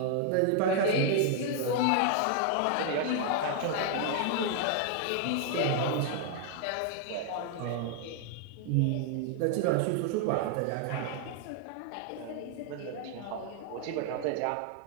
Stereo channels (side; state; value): both; different; correlation 0.00